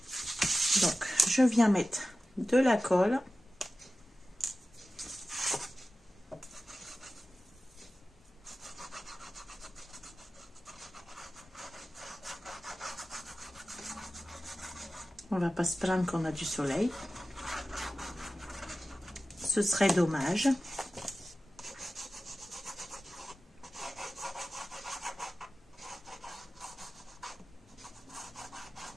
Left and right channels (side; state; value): both; normal; correlation 0.95